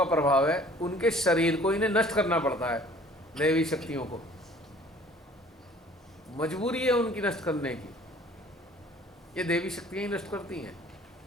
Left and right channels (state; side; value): normal; both; correlation 0.52